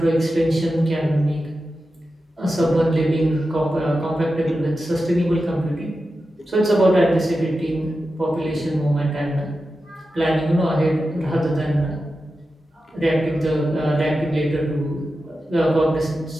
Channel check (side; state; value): both; normal; correlation 0.91